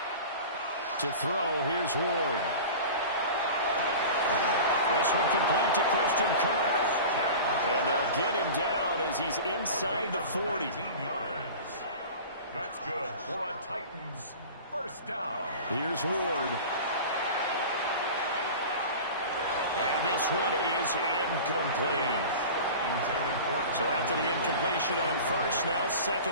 To throw, here's Ward. This one complete to Christian Kirk. And they'll get him down as he's inside the 40. Yards. That's good for a Titans first down. Here's Ward. And this one is incomplete. So after the incompletion on first, now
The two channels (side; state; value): both; inverted; correlation -0.36